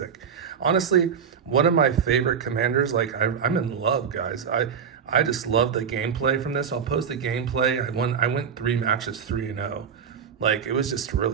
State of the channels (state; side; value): quieter; left; 7.1 dB